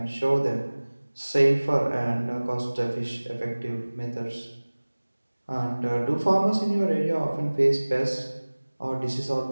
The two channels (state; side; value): inverted; both; correlation -1.00